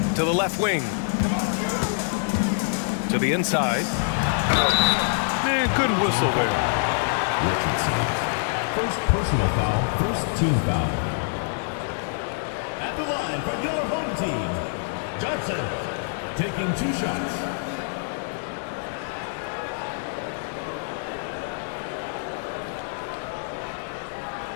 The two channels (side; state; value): right; silent; digital silence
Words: To the left wing. To the inside. Man, good whistle there. Richardson. First personal foul, first team foul. At the line for your home team, Johnson taking 2 shots.